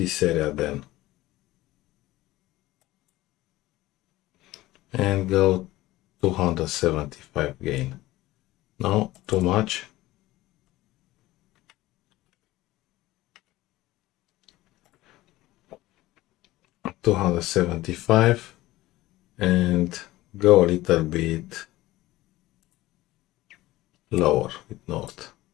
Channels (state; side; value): quieter; right; 17.4 dB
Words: area then. And go 275 gain. No, too much. $275 and go a little bit lower with north.